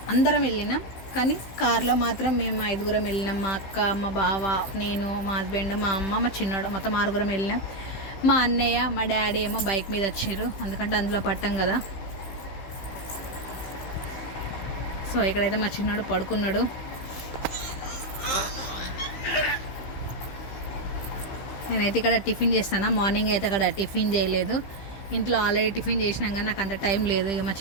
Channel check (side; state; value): right; late; 15 ms